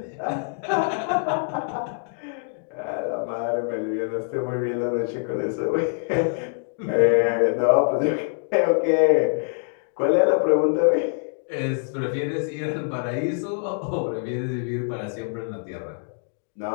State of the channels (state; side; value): silent; right; digital silence